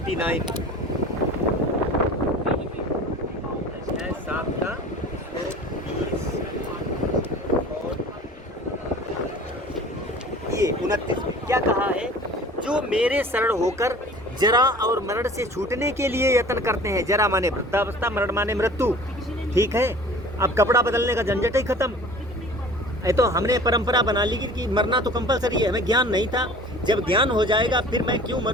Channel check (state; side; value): normal; both; correlation 0.44